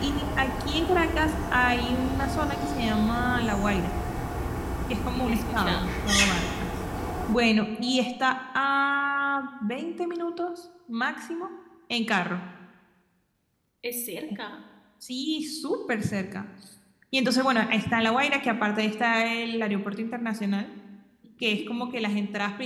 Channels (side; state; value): both; identical; correlation 1.00